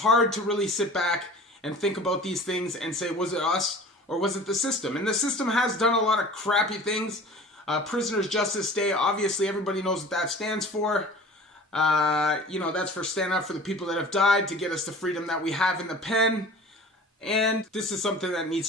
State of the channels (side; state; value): both; normal; correlation 0.43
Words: to really sit back and think about these things and say, was it us or was it the system? And the system has done a lot of crappy things. Prisoners Justice Day, obviously everybody knows what that stands for. You know, that's for stand up for the people that have died to get us the freedom that we have in the pen. And this is something that